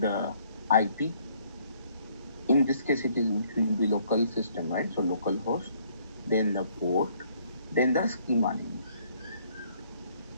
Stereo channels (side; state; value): both; inverted; correlation -0.65